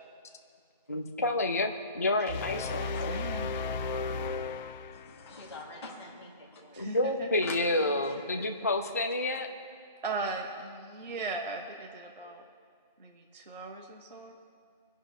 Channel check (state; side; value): inverted; both; correlation -0.38